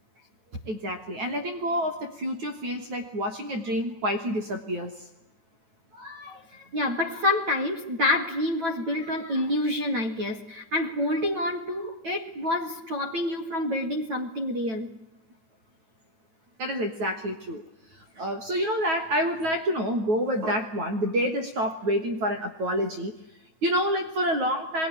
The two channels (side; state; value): left; late; 9.1 ms